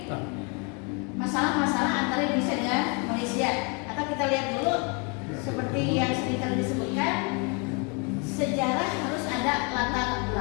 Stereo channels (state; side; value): quieter; right; 33.2 dB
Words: masalah-masalah antara Indonesia dengan Malaysia. Atau kita lihat dulu seperti yang sering kali disebutkan, sejarah harus ada latar